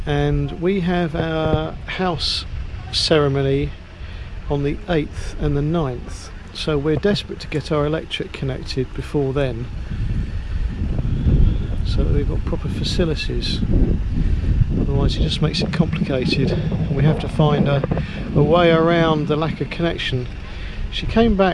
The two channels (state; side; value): identical; both; correlation 1.00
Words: and we have our house ceremony on the 8th and the 9th, so we're desperate to get our electric connected before then so that we've got proper facilities. Otherwise it just makes it complicated and we have to find a way around the lack of connection. She came